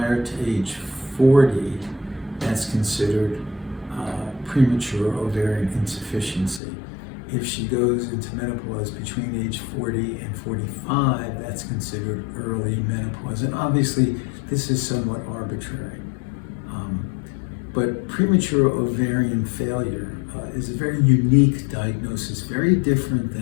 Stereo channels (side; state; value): right; drops out; at 6.6 s